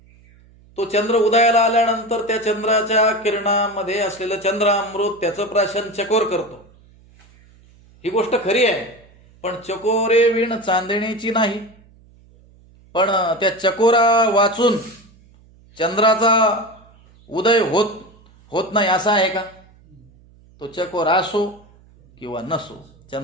तो चंद्र उदयाला आल्यानंतर त्या चंद्राच्या किरणामध्ये असलेलं चंद्रामृत त्याचं प्राशन चकोर करतो. ही गोष्ट खरी आहे. पण चकोरे विण चांदणीची नाही. पण त्या चकोरा वाचून चंद्राचा उदय होत नाही असं आहे का. तो चकोर असो किंवा नसो,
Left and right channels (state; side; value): noise; right; hum, 28 dB below the sound